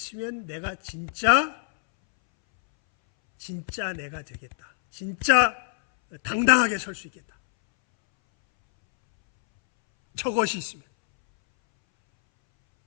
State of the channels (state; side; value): silent; right; 62 dB below the other